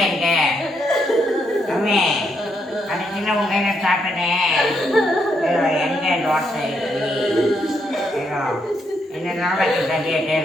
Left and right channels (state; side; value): normal; both; correlation 0.77